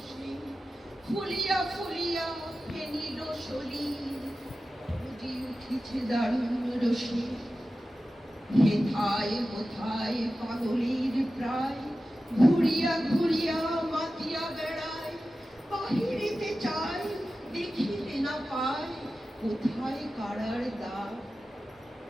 ফুলিয়া ফুলিয়া ফেনিল শরীর উঠিছে দারুণ রসে। হেথায় কোথায় পাগলের প্রায় ঘুরিয়া ঘুরিয়া মাতিয়া বেড়ায়, বাহিরিতে চায় দেখিতে না পায় কোথায় কারার দ্বার।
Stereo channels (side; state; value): both; normal; correlation 0.94